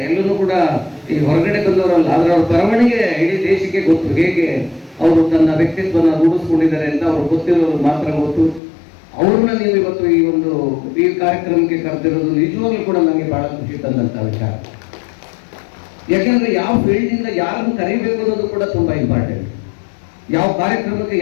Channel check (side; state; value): right; drops out; at 8.6 s